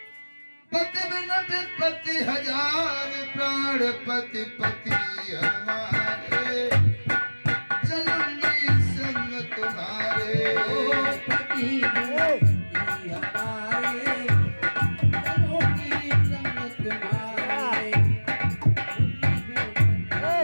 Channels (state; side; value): inverted; both; correlation -1.00